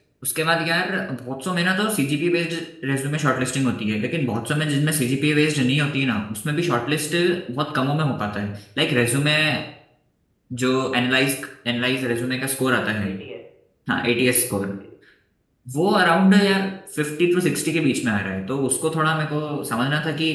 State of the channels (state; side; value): identical; both; correlation 1.00